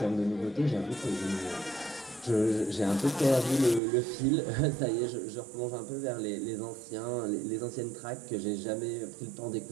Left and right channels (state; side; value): drops out; left; at 3.8 s